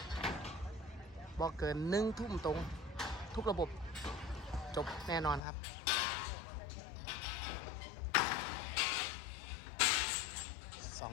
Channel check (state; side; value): drops out; right; at 5.4 s